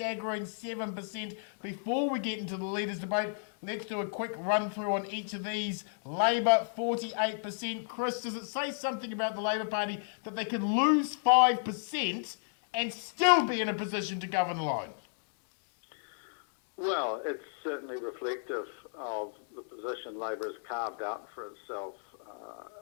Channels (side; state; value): right; silent; digital silence